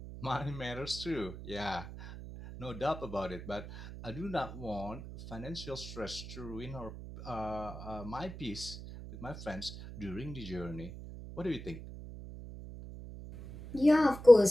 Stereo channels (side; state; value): right; noise; hum, 12 dB below the sound